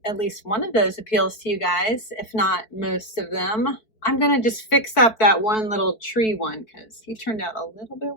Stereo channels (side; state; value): right; late; 4.6 ms